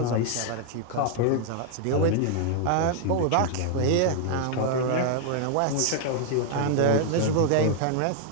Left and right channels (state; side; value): different; both; correlation 0.00